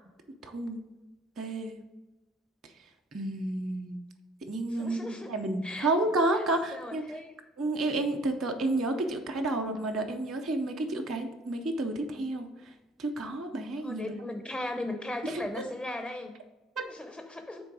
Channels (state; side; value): normal; both; correlation 0.55